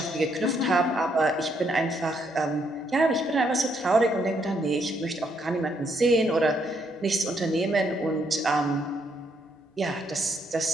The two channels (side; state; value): both; normal; correlation 0.74